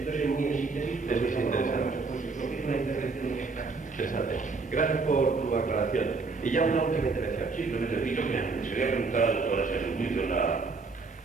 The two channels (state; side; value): quieter; left; 4.2 dB